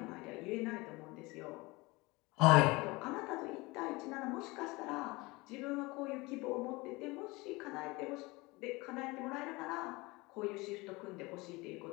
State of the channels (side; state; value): right; quieter; 23.4 dB